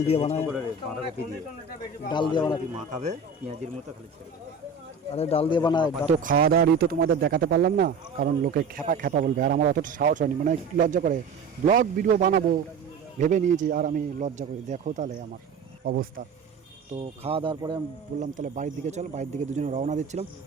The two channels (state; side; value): quieter; left; 4.7 dB